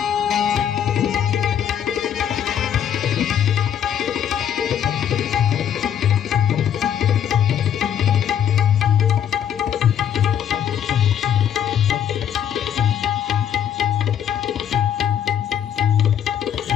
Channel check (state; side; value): quieter; right; 9.4 dB